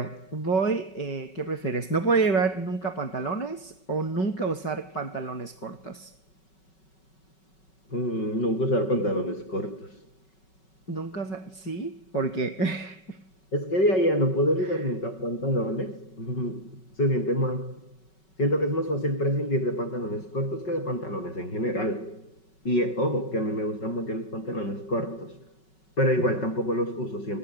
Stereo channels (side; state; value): right; late; 5.3 ms